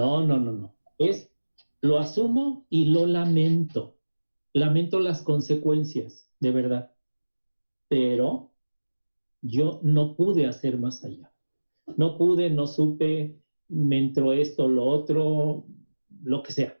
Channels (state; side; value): inverted; both; correlation -1.00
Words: no, no, no. Es, lo asumo y lo lamento. Lamento las consecuencias, de verdad. Pero yo no pude hacer más allá. No pude, no supe, me entró esto, lo otro, lo que sea.